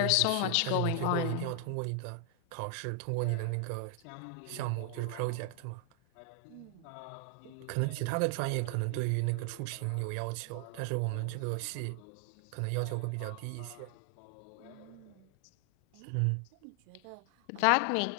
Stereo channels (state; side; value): different; both; correlation 0.00